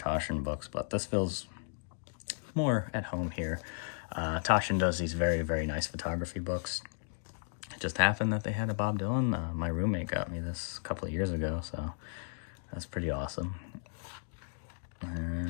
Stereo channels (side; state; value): right; silent; digital silence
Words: books, but this feels more at home here. Toshin does these very, very nice photography books. It just happened that they had a Bob Dylan. My roommate got me this a couple of years ago, so that's pretty awesome.